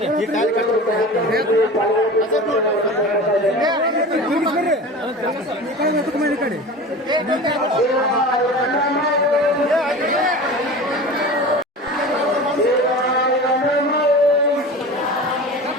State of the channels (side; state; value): both; normal; correlation 0.34